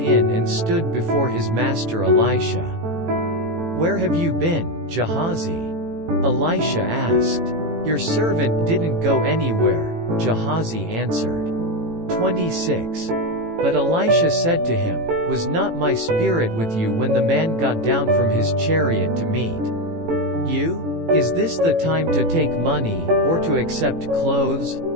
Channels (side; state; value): left; late; 18 ms